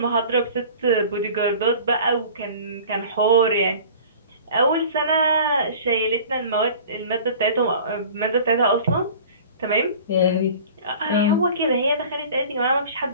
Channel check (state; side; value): inverted; both; correlation -0.43